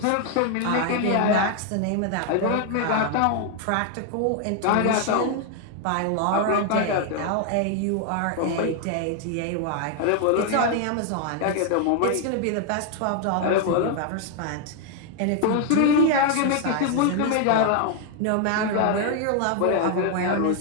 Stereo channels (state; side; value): different; both; correlation 0.00